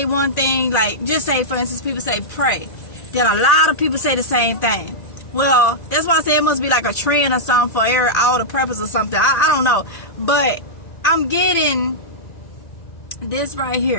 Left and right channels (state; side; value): late; right; 1.8 ms